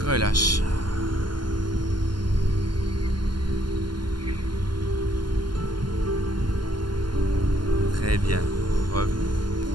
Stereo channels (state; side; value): late; left; 0.71 ms